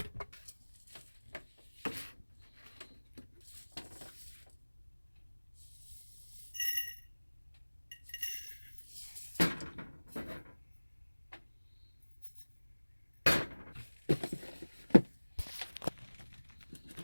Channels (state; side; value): inverted; both; correlation -1.00